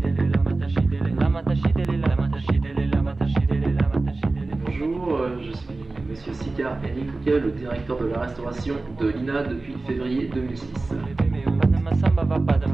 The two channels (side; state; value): left; quieter; 3.3 dB